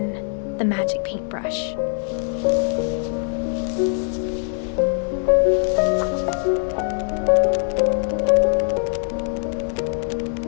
The Magic Paintbrush.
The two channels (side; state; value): right; silent; 62 dB below the other